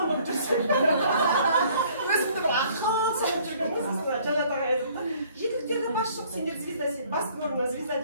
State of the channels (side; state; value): both; inverted; correlation -0.58